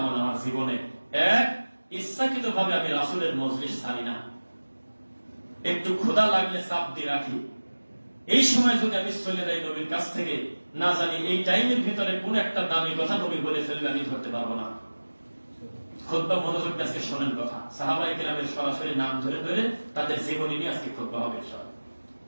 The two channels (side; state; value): both; inverted; correlation -1.00